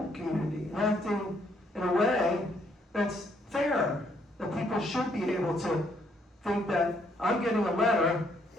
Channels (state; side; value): normal; both; correlation 0.70